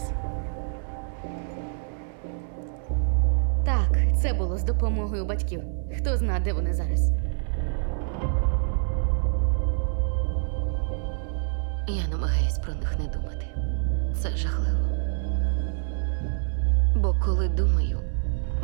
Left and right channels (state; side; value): silent; left; 61 dB below the other